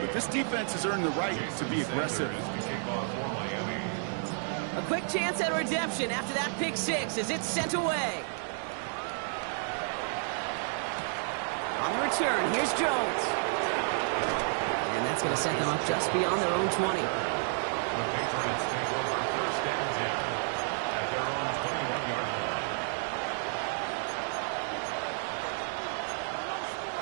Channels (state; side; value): silent; left; 57 dB below the other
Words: but this defense has earned the right to be aggressive. A quick chance at redemption after that pick 6 as it's sent away. On the return, here's Jones. And that's going to set them up just beyond their own 20. The Patriots take over 1st and 10 at their own 21-yard line.